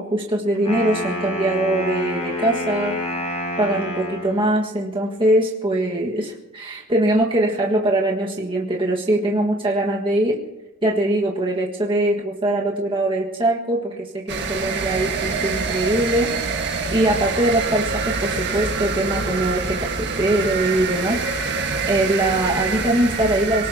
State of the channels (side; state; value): both; normal; correlation 0.50